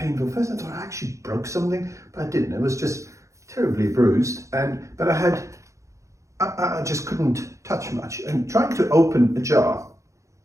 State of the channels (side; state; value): left; late; 0.15 ms